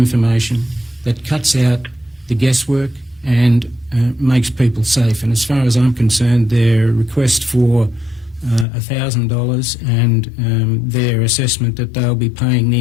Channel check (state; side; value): drops out; right; at 8.7 s